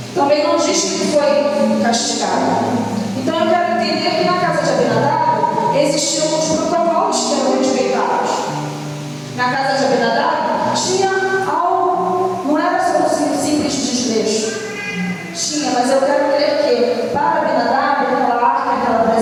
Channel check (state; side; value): identical; both; correlation 1.00